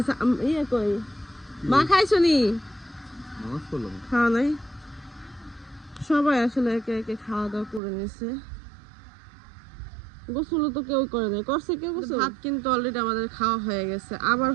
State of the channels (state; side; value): drops out; left; at 7.8 s